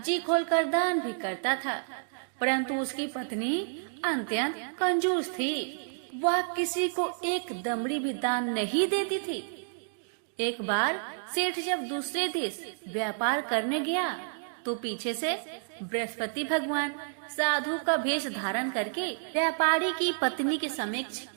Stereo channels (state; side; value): silent; left; digital silence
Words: खोलकर दान भी करता था। परंतु उसकी पत्नी अत्यंत कंजूस थी। वह किसी को एक दमड़ी भी दान नहीं देती थी। एक बार सेठ जब दूसरे देश व्यापार करने गया तो पीछे से बृहस्पति भगवान साधु का वेश धारण करके व्यापारी की पत्नी के समक्ष